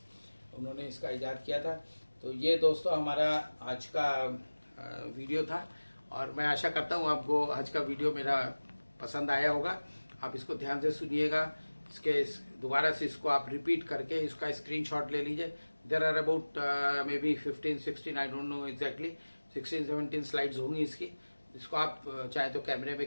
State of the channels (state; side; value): inverted; both; correlation -1.00